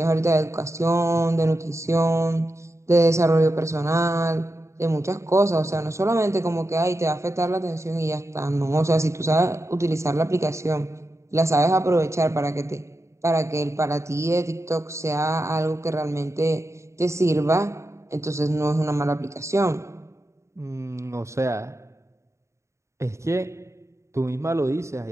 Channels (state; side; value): late; left; 0.14 ms